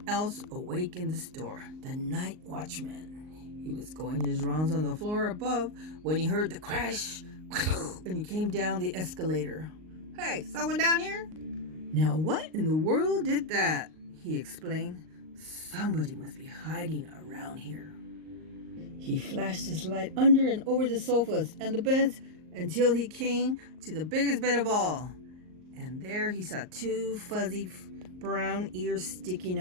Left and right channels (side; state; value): left; late; 38 ms